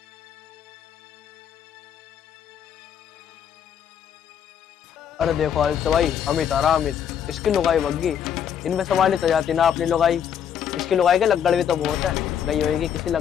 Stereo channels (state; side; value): quieter; right; 8.7 dB